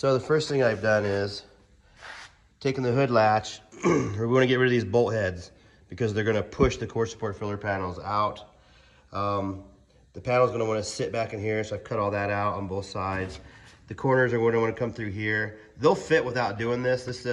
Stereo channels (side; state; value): both; identical; correlation 1.00